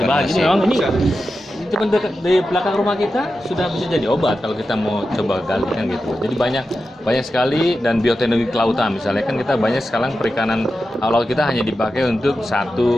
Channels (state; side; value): normal; both; correlation 0.91